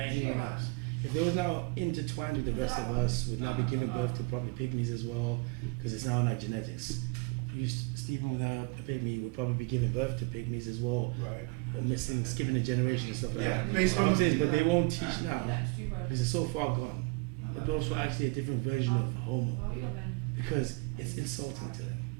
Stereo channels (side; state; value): left; quieter; 26.3 dB